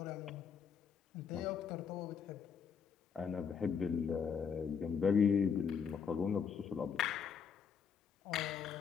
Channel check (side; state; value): right; quieter; 6.7 dB